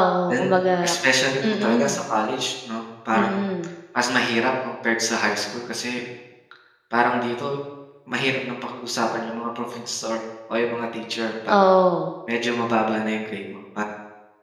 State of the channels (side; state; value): both; identical; correlation 1.00